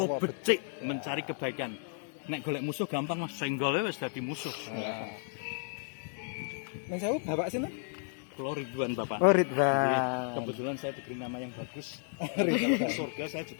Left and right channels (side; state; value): right; silent; 56 dB below the other